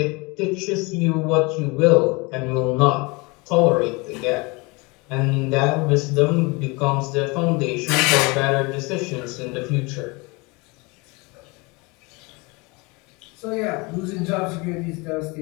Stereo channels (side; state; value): right; quieter; 26.8 dB